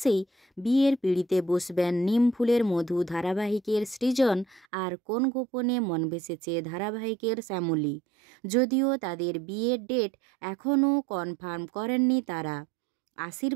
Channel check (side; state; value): left; drops out; at 4.7 s